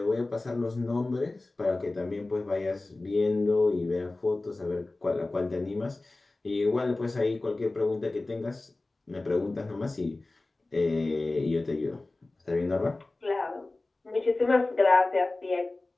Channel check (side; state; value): right; quieter; 3.0 dB